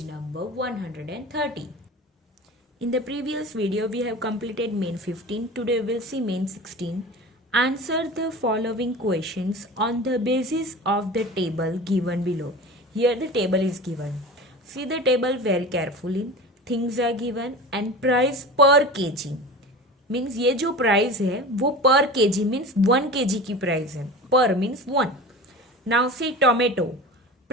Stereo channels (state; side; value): normal; both; correlation 0.33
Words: number 130. In the previous video we have completed main 15. Today we will see main 16. Answer the following questions on the basis of the table given below. Here the table is given. See the table very carefully. Things are given and price per kg. Means ये जो price है वो पर KG means 1 KG की price है. पर means 1. Now see tomato.